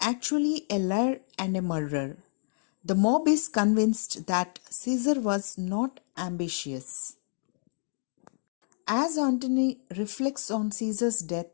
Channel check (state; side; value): silent; right; digital silence